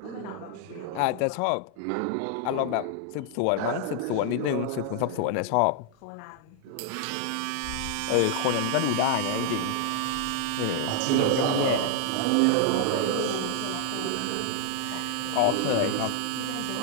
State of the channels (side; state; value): both; different; correlation 0.00